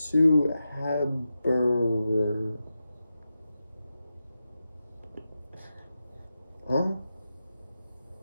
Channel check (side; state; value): both; inverted; correlation -0.91